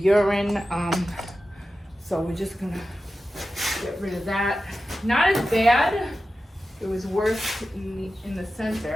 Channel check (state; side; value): normal; both; correlation 0.93